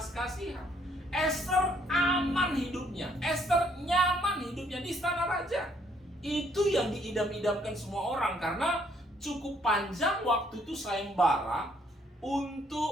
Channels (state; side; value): normal; both; correlation 0.67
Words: kasihan. Esther aman hidupnya, Esther nyaman hidupnya di istana raja. Itu yang diidam-idamkan semua orang, karena cukup panjang waktu itu sayembara